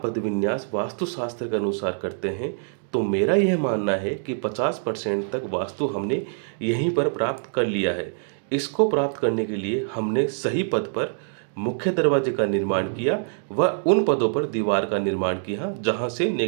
वास्तुशास्त्र के अनुसार करते हैं तो मेरा यह मानना है कि 50% तक वास्तु हमने यहीं पर प्राप्त कर लिया है। इसको प्राप्त करने के लिए हमने सही पद पर मुख्य दरवाजे का निर्माण किया व उन पदों पर दीवार का निर्माण किया जहां से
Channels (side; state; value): left; silent; digital silence